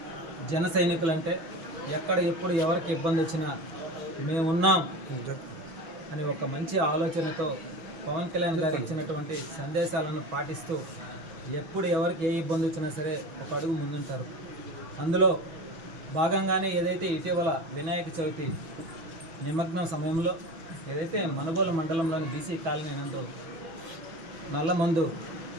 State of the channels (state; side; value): late; left; 6.0 ms